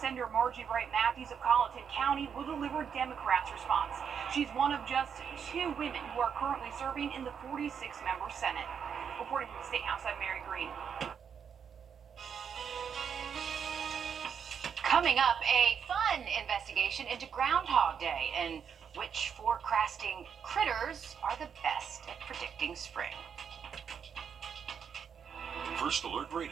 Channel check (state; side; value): quieter; left; 7.3 dB